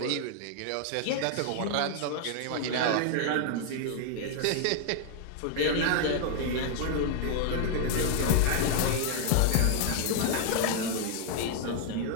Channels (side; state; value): both; different; correlation 0.00